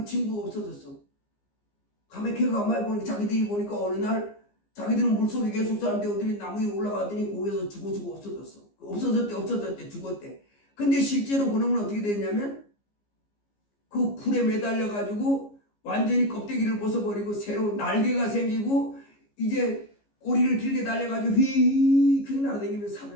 친구가 없어졌어. 가만히 가만히 보니까 자기들이 보니까 어느 날 자기들은 물속에 계속 사는데 어디 나무 위에 올라가더니 거기서 죽어 없어졌어. 없어졌대 죽었대. 근데 실제로 그놈은 어떻게 됐냐면 그 풀에 매달려가지고 완전히 껍데기를 벗어버리고 새로운 날개가 생기고 이제 꼬리를 길게 달려가지고 휙휙 날아다니면서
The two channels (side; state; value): right; late; 15 ms